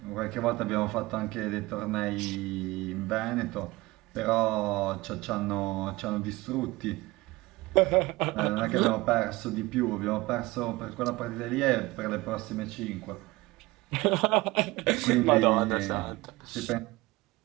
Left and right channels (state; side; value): quieter; left; 20.8 dB